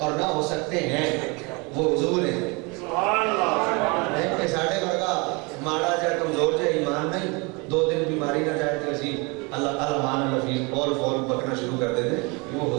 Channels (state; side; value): quieter; left; 28.7 dB